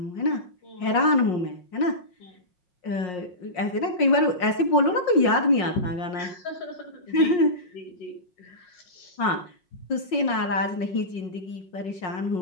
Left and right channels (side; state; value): right; late; 5.5 ms